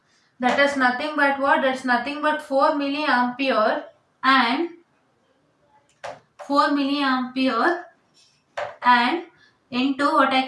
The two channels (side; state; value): both; identical; correlation 1.00